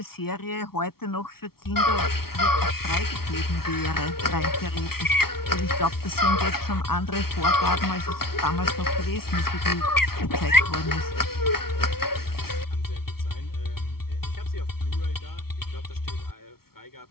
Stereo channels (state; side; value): late; right; 0.94 ms